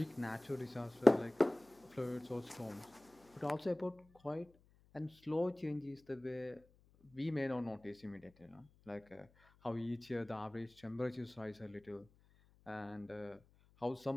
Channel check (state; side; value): noise; left; hum, 29 dB below the sound